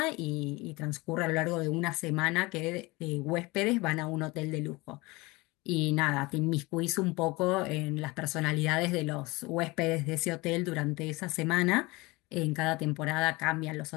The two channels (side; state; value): right; quieter; 23.3 dB